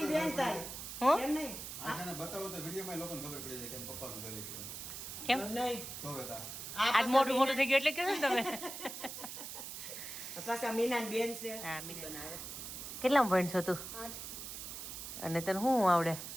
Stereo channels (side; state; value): right; noise; hiss, 8 dB below the sound